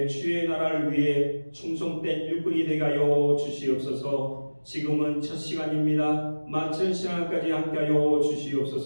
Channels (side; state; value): both; inverted; correlation -1.00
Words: 주의 나라를 위해 충성된 일꾼이 되게 하여 주시옵소서. 지금은 첫 시간입니다. 마치는 시간까지 함께하여